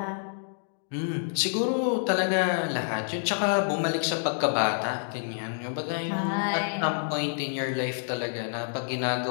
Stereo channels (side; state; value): right; silent; digital silence